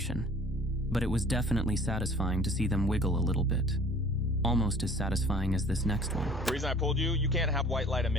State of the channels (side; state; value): both; normal; correlation 0.50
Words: But it was definitely satisfying to see them wiggle a little bit. Almost as satisfying as this next one. The reason I pulled you, you can't have white light